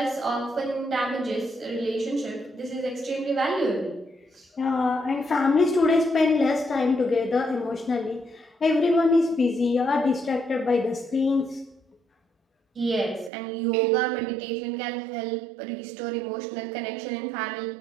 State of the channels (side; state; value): left; drops out; at 13.3 s